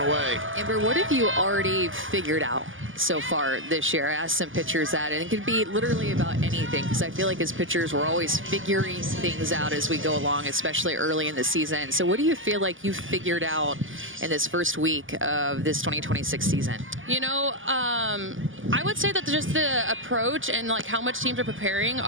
away. Amber, what have you already figured out so far this year? I asked some pitchers that, and it could be literally about anything, because I feel like as pitchers, we're always figuring things out as we go along, especially early in the season. So what do you feel like you've figured out in this first week of this 2026 season? You know, I would say that just the approach and like how much teams are preparing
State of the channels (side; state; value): left; late; 0.58 ms